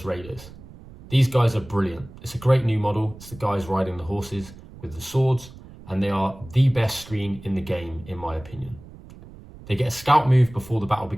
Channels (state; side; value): noise; right; rumble, 18 dB below the sound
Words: Raiders. These guys are brilliant. It's a great new model. It's the guys riding the horses with the swords, and they are the best screen in the game, in my opinion. They get a scout move before the battle